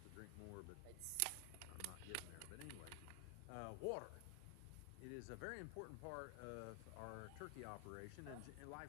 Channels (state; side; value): different; both; correlation 0.00